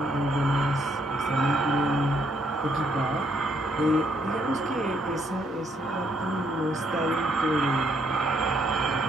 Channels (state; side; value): normal; both; correlation 0.71